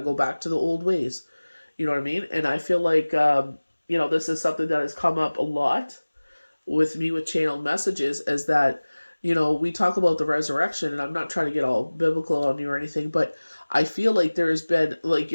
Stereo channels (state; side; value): inverted; both; correlation -1.00